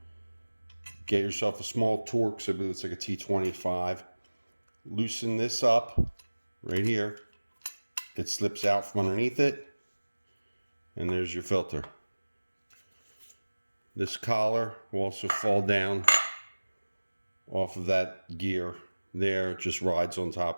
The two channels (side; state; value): both; inverted; correlation -1.00